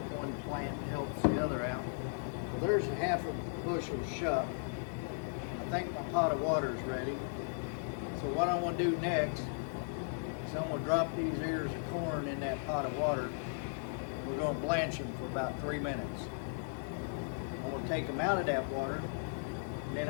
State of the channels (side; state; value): right; silent; digital silence